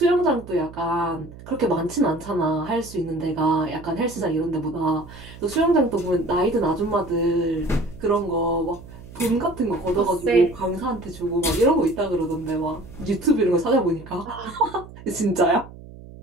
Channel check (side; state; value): right; noise; hum, 17 dB below the sound